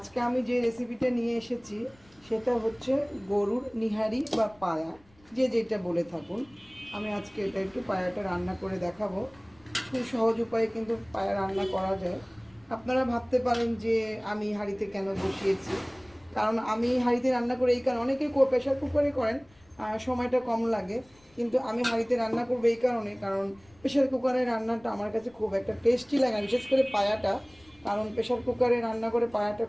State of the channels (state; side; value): noise; left; rumble, 29 dB below the sound